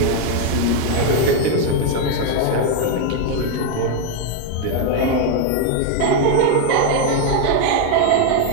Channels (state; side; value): different; both; correlation 0.01